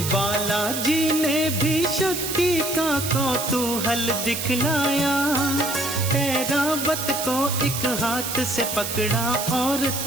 बालाजी ने भी शक्ति का कौतूहल दिखलाया। ऐरावत को एक हाथ से पकड़ा और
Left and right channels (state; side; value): noise; right; hiss, 4 dB below the sound